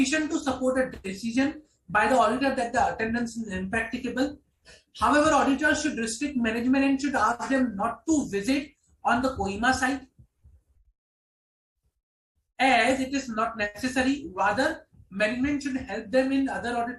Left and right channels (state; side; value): identical; both; correlation 1.00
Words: to support a decision by the auditor that the attendance is impracticable. However, auditors should restrict management and should ask them not to visit on the Kohima site as it is not necessary. Rather, management should help them in other